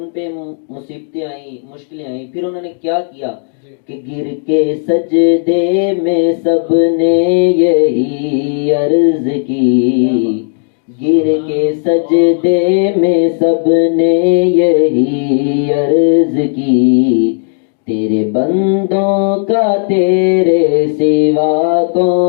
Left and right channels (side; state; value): right; silent; digital silence